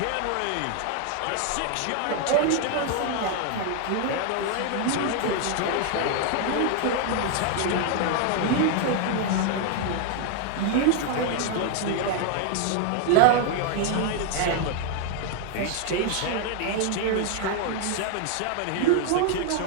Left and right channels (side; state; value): both; different; correlation 0.00